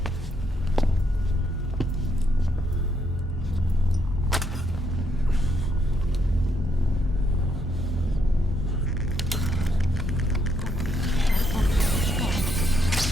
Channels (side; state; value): both; normal; correlation 0.74